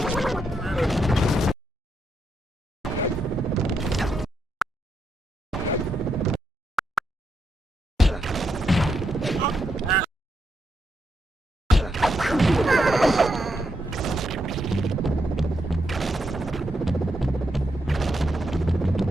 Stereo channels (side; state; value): both; normal; correlation 0.81